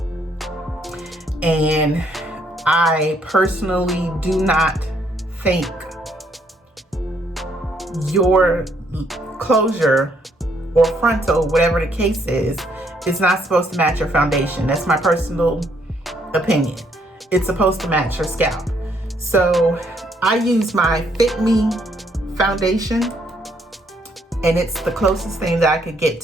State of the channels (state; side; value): normal; both; correlation 0.70